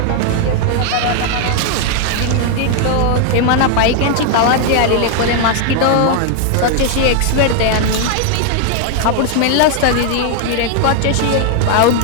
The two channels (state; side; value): different; both; correlation 0.00